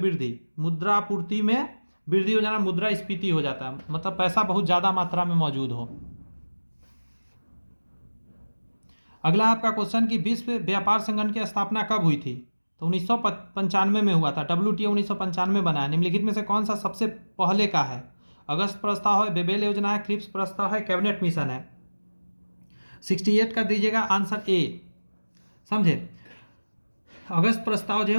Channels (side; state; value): both; inverted; correlation -1.00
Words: मुद्रा आपूर्ति में वृद्धि हो जाना मुद्रास्फीति हो जाता है, मतलब पैसा बहुत ज़्यादा मात्रा में मौजूद हो। अगला आपका क्वेश्चन कि विश्व व्यापार संगठन की स्थापना कब हुई थी? तो 1995 में हुआ था। WTO 1995 बना है। निम्नलिखित में से कौन सा सबसे पहले का है? अगस्त प्रस्ताव है, बेबेल योजना है, क्रिप्स प्रस्ताव है, कैबिनेट मिशन है। 68 कर दीजिएगा, आंसर ए। समझे? अगस्त प्रस्ताव जो है